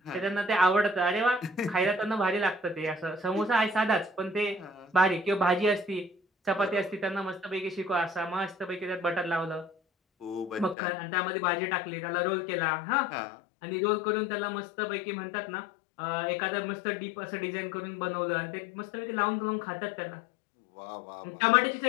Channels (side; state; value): right; drops out; at 10.8 s